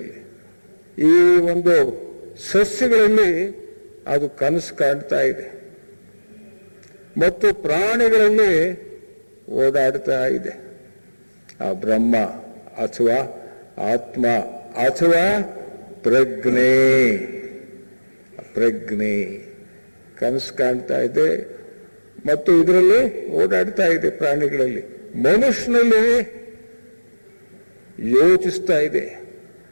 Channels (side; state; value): both; inverted; correlation -1.00